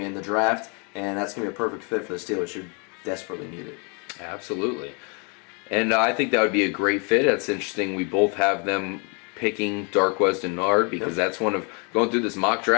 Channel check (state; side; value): quieter; right; 34.8 dB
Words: in the draft, and that's going to be a perfect fit for the Steelers, who desperately need it. Absolutely. And I think that would be a great fit. That's interesting. We both have them picking Darqueze Dennard, because that's one of, going through this mock